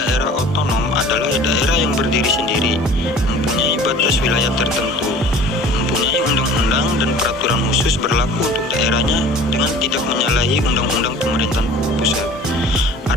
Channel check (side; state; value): both; normal; correlation 0.45